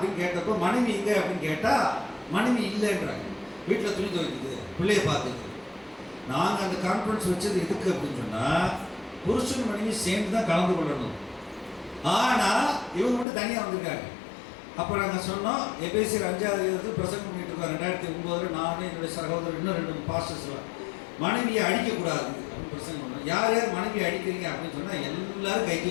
கேட்டப்போ, மனைவி எங்க அப்படின்னு கேட்டா மனைவி இல்லைன்றாங்க. வீட்டில் துணி துவைக்குது, பிள்ளைய பார்க்குது. நாங்கள் அந்த கான்ஃபரன்ஸ் வச்சது எதுக்கு அப்படின்னு சொன்னால், புருஷன் மனைவி சேர்ந்து தான் கலந்து கொள்ளணும். ஆனால் இவங்க மட்டும் தனியாக வந்திருக்காங்க. அப்போ நாங்கள் சொன்னோம், எபேசியர் 5வது பிரசங்கம் பண்ணிட்டு இருக்கோம் 2009. நான் என்னுடைய சகோதரர் இன்னும் 2 பாஸ்டர்ஸ்லாம் மனைவியை அடிக்கக்கூடாது அப்படின்னு பிரசங்கம் பண்ணோம். யார் யார் மனைவியை அடிக்கிறீங்க அப்படின்னு சொன்னால் எல்லாரும் கை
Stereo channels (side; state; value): right; drops out; at 13.2 s